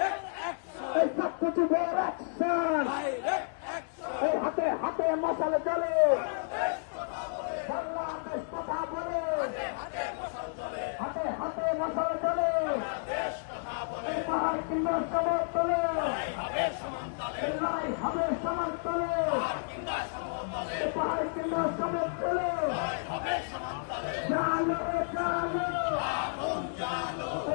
এই ছাত্রযুগের অ্যাকশন, এই হাতে হাতে মশাল জ্বলে, বাংলাদেশ কথা বলে, হাতে হাতে মশাল জ্বলে, এই পাহাড় কিংবা সবার তলে, লড়াই হবে সবার তলে, এই পাহাড় কিংবা সবার তলে, জালো জালো,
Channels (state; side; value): silent; right; digital silence